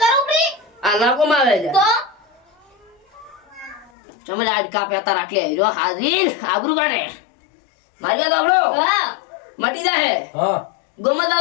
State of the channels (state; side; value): drops out; right; at 3.9 s